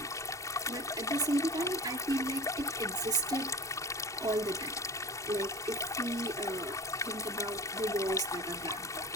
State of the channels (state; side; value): normal; both; correlation 0.35